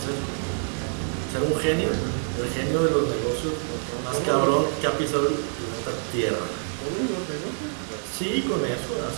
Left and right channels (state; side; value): silent; left; 61 dB below the other